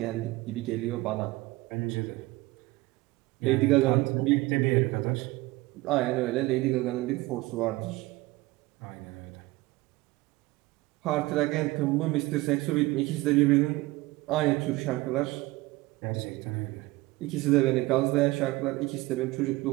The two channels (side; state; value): left; quieter; 20.3 dB